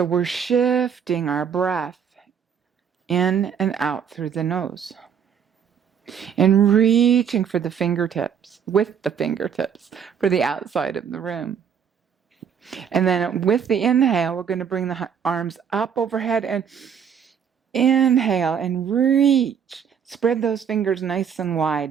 we're shifting our breath in and out through the nose. And reaching for the fingertips, with the fingertips, for the outside of the room. And then with the inhale, we're going to bring the arms up overhead and inhale and reach. Spread those fingers nice and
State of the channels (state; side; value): quieter; left; 7.6 dB